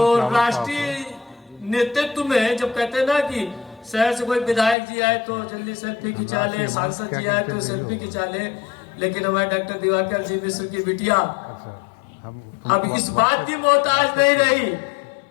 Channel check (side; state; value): right; drops out; at 4.8 s